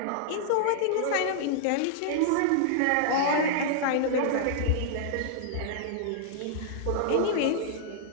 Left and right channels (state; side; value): different; both; correlation -0.01